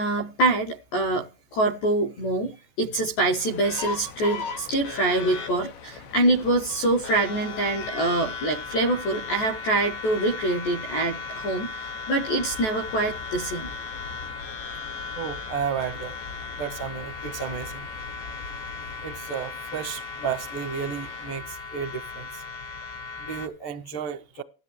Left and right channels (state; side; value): late; right; 14 ms